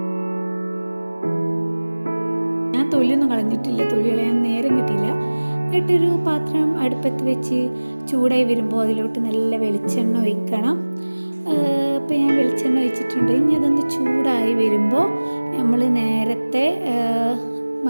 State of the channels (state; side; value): inverted; both; correlation -1.00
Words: ഞാൻ തൊലിയൊന്നും കളഞ്ഞിട്ടില്ല, തൊലി കളയാൻ നേരം കിട്ടിയില്ല. എന്നിട്ടൊരു പാത്രം അടുപ്പത്ത് വെച്ച് ചൂടായി വരുമ്പോൾ അതിലോട്ട് നല്ല വെളിച്ചെണ്ണ ഒഴിക്കണം. അപ്പോൾ ഞാൻ വെളിച്ചെണ്ണ ഒഴിച്ചിട്ടുണ്ട്. ഇനി അതൊന്ന് ചൂടായി വരുമ്പോൾ നമ്മൾ നേരത്തെ